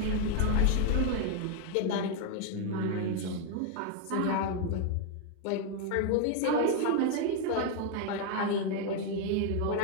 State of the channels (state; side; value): different; both; correlation 0.01